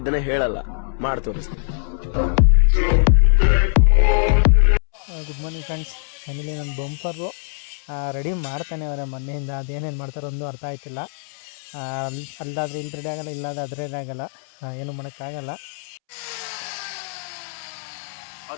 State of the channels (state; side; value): silent; right; 64 dB below the other